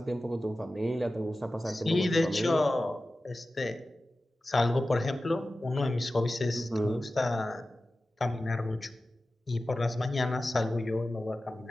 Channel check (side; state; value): both; normal; correlation 0.95